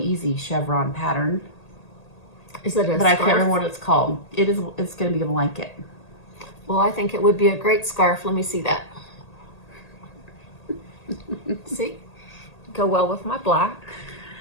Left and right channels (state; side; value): late; right; 1.8 ms